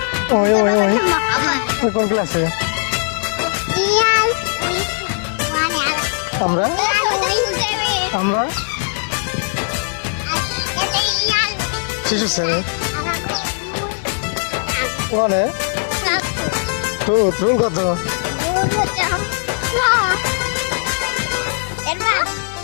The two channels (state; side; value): silent; right; digital silence